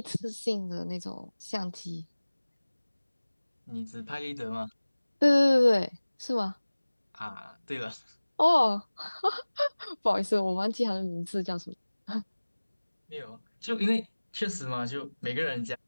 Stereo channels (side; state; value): both; inverted; correlation -1.00